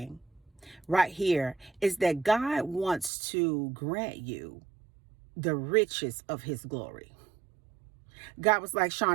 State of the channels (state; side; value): drops out; left; at 3.1 s